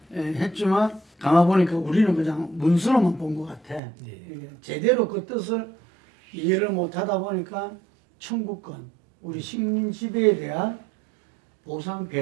예, 했지만 가만보니까 우리는 그냥 문서로만 본 것 같아. 예. 제대로 그 뜻을 이해를 못하다 보니까 청구권, 우리 식민 지배에 대한 보상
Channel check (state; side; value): drops out; left; at 3.8 s